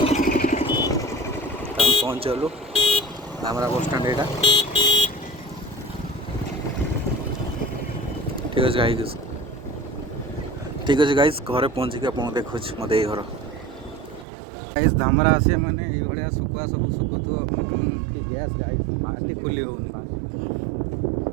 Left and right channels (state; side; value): drops out; left; at 14.2 s